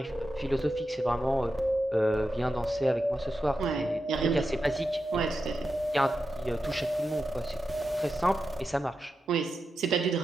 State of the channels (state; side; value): normal; both; correlation 0.89